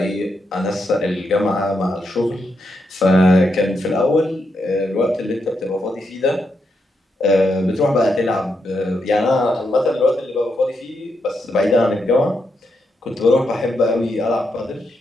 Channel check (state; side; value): normal; both; correlation 0.82